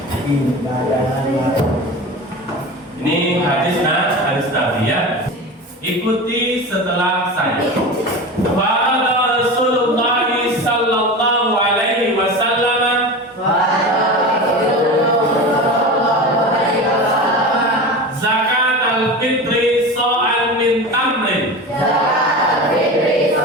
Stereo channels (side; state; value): both; normal; correlation 0.29